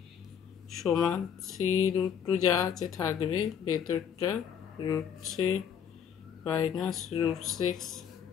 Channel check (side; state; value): right; quieter; 8.1 dB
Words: সমান 3√2 যা আছে থাকবে, ভেতরটা √3 মাইনাস √6,